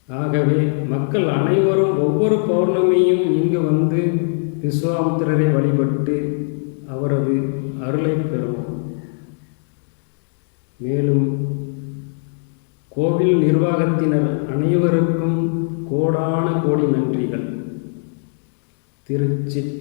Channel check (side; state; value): right; silent; digital silence